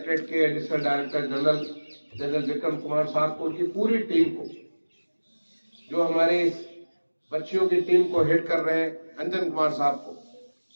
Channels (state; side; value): inverted; both; correlation -1.00